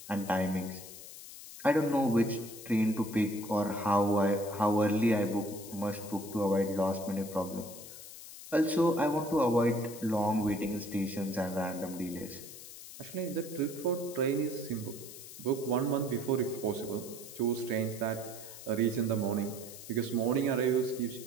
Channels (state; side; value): noise; left; hiss, 14 dB below the sound